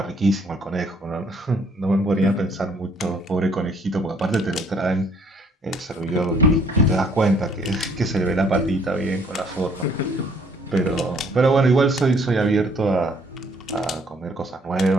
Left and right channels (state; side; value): normal; both; correlation 0.62